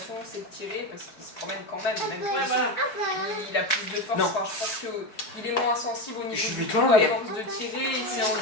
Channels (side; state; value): right; late; 4.7 ms